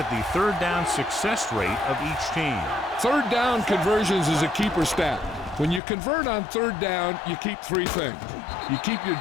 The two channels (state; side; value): drops out; right; at 5.8 s